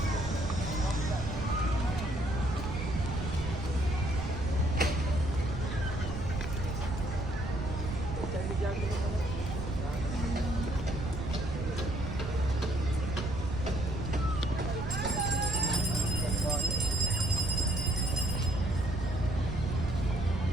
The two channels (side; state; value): right; noise; rumble, 5 dB below the sound